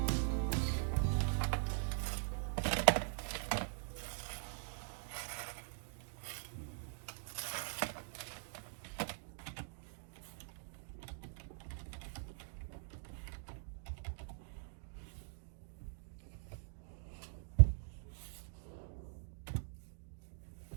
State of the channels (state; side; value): silent; left; digital silence